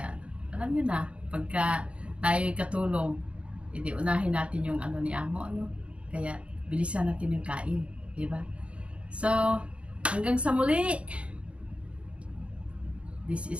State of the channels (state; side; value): late; left; 0.060 ms